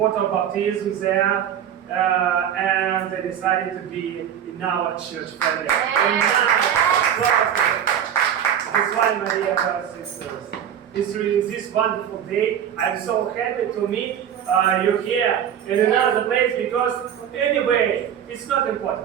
baptism there. And they decided to be in our church family. That's why, my dear brothers and sisters, it's really this wonderful day. I'm so happy to meet you here in another place because anyway, it's not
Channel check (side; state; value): left; quieter; 9.3 dB